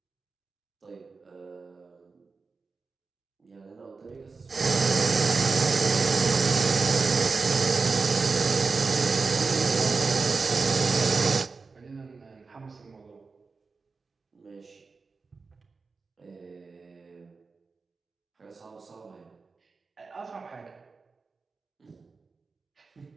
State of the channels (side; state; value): left; quieter; 4.4 dB